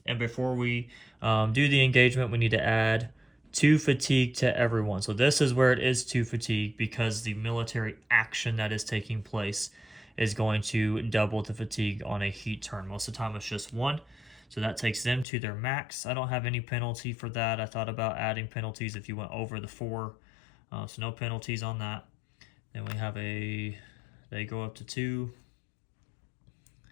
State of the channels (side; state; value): right; drops out; at 15.2 s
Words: And before we do the engagement, we need to add 2 fatigue to everyone. So this is where it is 2 fatigue, because the military action that is taking place is going to double the fatigue on a heat turn. Most of the time it's just 1. So that takes them to their max. I don't have any penalty for that. I thought about adding penalties if you went over the 4. So no penalties on that. Then we have they go up to 2.